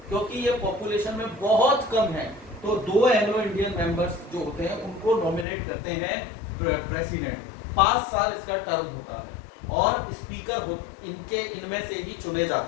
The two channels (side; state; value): right; drops out; at 5.5 s